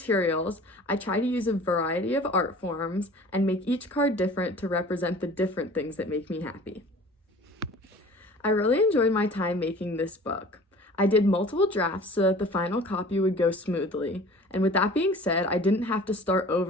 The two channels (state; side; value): normal; both; correlation 0.44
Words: I try to use a variety of art forms and make each card different to represent the different things that make me happy. I really enjoyed my time making this book. I did multiple drafts so that the final copy would go smoothly. And with that being said, I didn't have to start